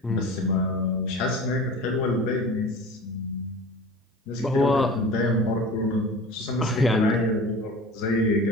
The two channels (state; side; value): normal; both; correlation 0.38